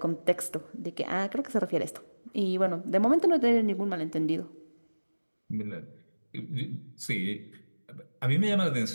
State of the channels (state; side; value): inverted; both; correlation -1.00